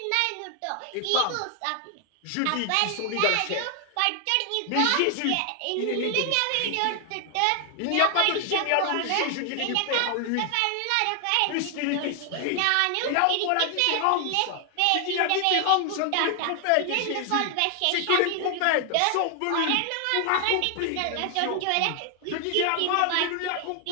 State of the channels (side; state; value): both; different; correlation 0.00